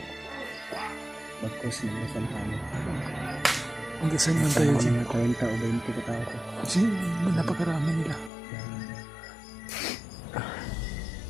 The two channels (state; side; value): drops out; right; at 8.3 s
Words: Bagkos na masan kami. Magdasal man tayo Sama dyan. mga 30 o 20 ka tao ko. Kasi napakarami nila.